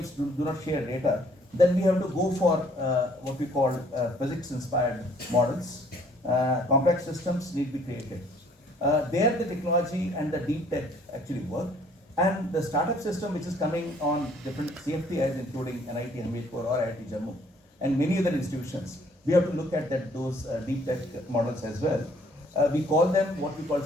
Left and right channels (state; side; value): normal; both; correlation 0.61